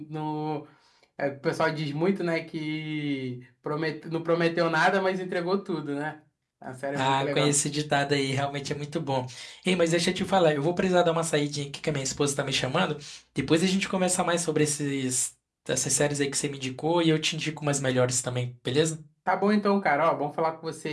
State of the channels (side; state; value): both; identical; correlation 1.00